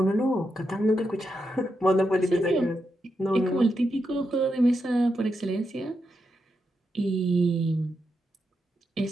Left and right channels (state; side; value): normal; both; correlation 0.85